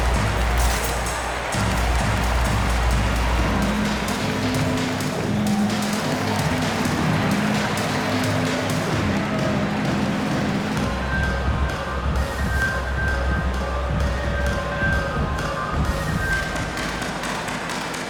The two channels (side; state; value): both; identical; correlation 1.00